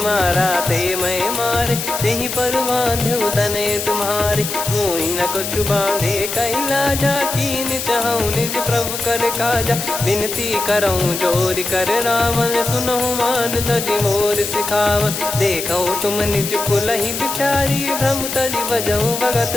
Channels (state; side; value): noise; left; hiss, 5 dB below the sound